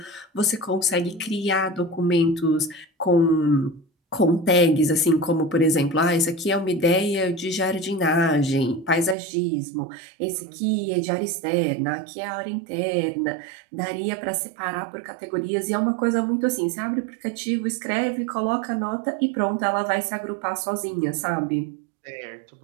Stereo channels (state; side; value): drops out; left; at 9.2 s